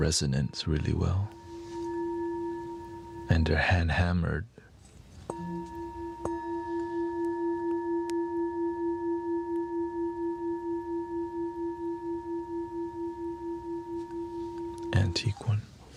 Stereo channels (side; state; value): both; identical; correlation 1.00